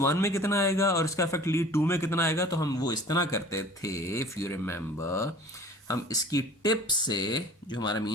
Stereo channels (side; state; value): both; normal; correlation 0.46